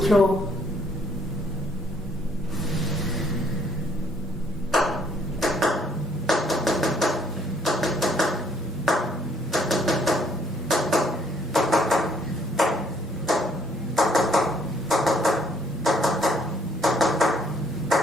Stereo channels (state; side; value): normal; both; correlation 0.66